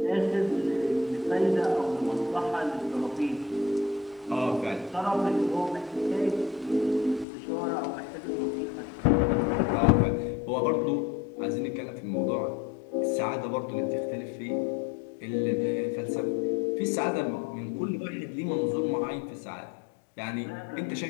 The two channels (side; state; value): right; drops out; at 7.2 s